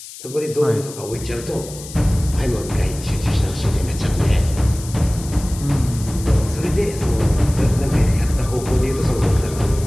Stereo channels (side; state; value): left; noise; hiss, 14 dB below the sound